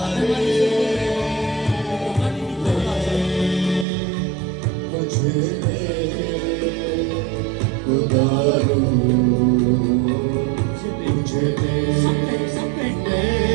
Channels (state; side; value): drops out; left; at 3.9 s